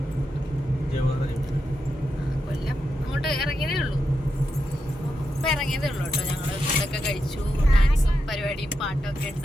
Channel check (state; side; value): normal; both; correlation 0.86